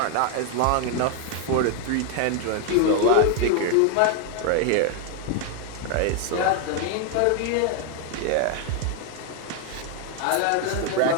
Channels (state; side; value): different; both; correlation 0.01